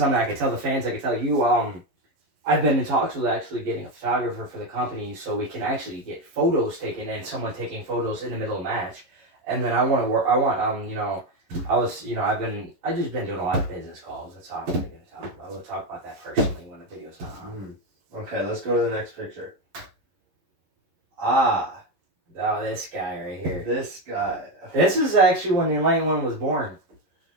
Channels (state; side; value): late; left; 11 ms